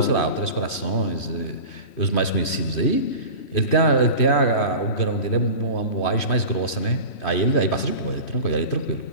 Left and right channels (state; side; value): late; right; 3.1 ms